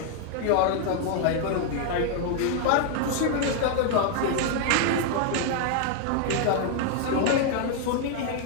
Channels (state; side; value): different; both; correlation 0.00